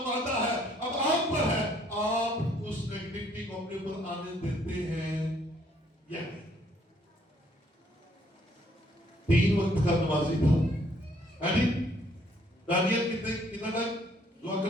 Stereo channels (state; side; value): normal; both; correlation 0.65